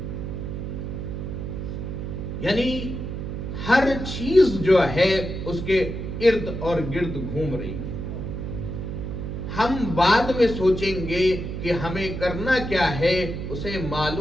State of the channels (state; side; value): noise; right; hum, 5 dB below the sound